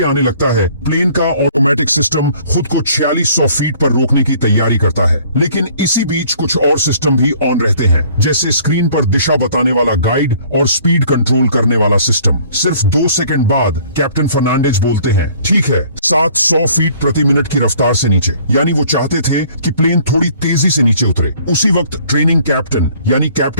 आने लगता है, प्लेन का ऑटोमेटिक सिस्टम खुद को 4600 फीट पर रोकने की तैयारी करता है। लेकिन इसी बीच कुछ और सिस्टम भी ऑन रहते हैं, जैसे स्क्रीन पर दिशा बताने वाला गाइड और स्पीड कंट्रोल करने वाला सिस्टम। सिर्फ 2 सेकंड बाद कैप्टन फर्नांडिस बोलते हैं, ठीक है, 700 फीट प्रति मिनट की रफ्तार से नीचे। यानी वो चाहते थे कि प्लेन थोड़ी तेजी से नीचे उतरे। उसी वक्त ट्रेनिंग कैप्टन यानी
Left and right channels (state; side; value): inverted; both; correlation -0.55